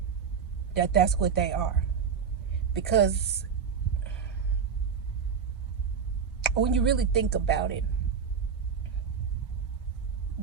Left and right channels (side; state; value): left; quieter; 6.6 dB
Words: that's what they are. Because when you really think about it,